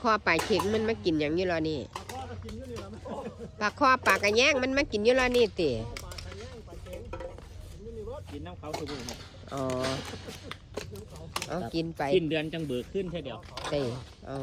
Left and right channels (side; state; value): both; identical; correlation 1.00